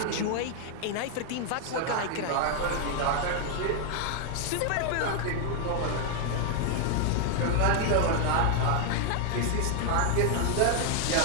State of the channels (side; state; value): both; different; correlation 0.00